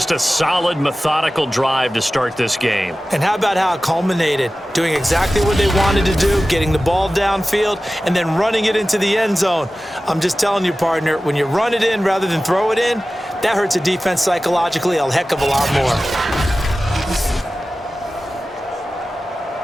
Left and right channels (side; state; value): both; normal; correlation 0.95